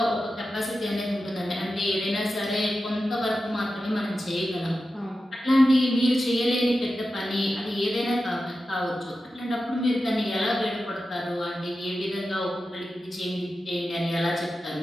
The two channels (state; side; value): normal; both; correlation 0.92